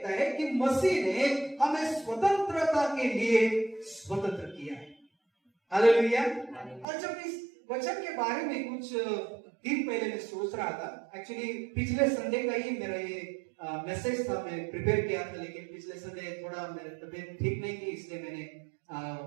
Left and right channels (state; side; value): drops out; left; at 6.9 s